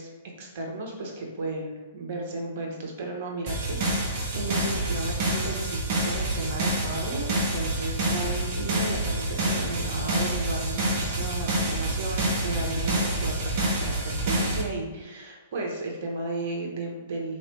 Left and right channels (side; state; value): both; inverted; correlation -0.45